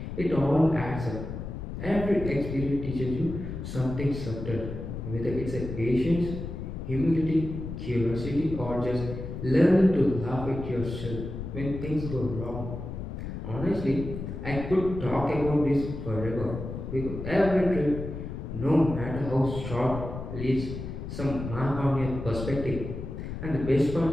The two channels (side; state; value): left; noise; rumble, 7 dB below the sound